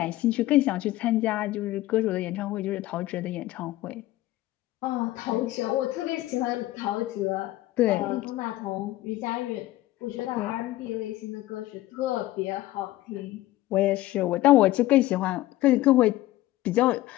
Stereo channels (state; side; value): quieter; right; 16.4 dB